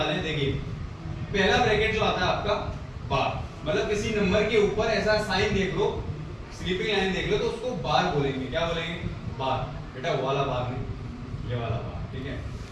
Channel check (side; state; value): both; identical; correlation 1.00